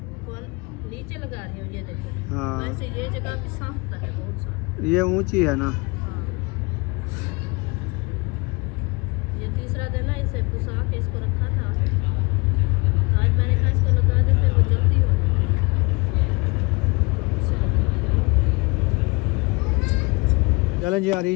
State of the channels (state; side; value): quieter; right; 27.7 dB